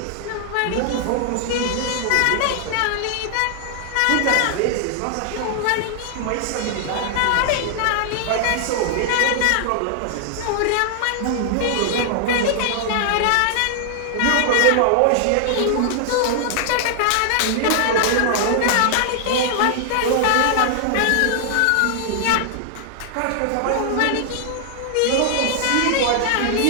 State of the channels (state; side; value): different; both; correlation -0.01